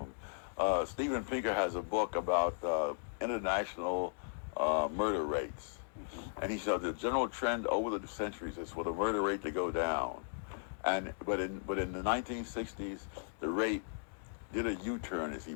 Steven Pinker has a book about international murder rates, and he said the general trend over the centuries is for the murder rate to go down, but in the 1960s the rate did a U-turn, as he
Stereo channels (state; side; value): silent; right; digital silence